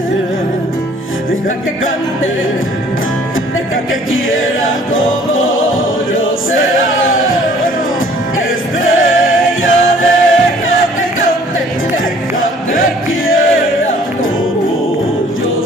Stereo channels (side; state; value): both; normal; correlation 0.56